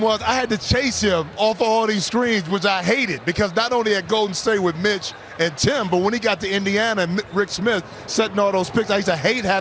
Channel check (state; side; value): identical; both; correlation 1.00